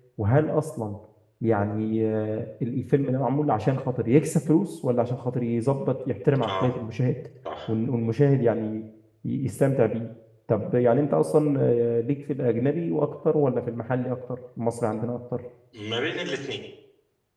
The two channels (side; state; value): both; identical; correlation 1.00